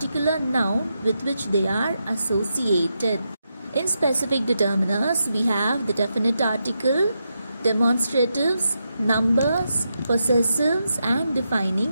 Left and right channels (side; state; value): both; inverted; correlation -0.85